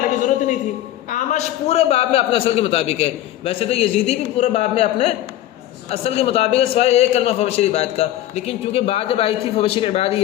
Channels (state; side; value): quieter; right; 13.5 dB